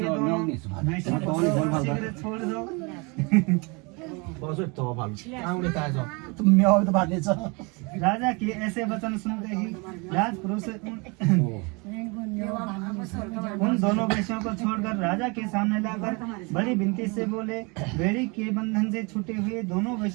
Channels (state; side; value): quieter; left; 29.5 dB